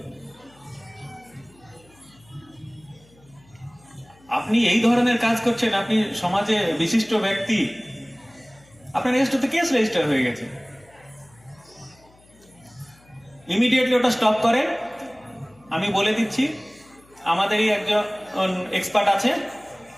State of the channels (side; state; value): left; noise; hum, 29 dB below the sound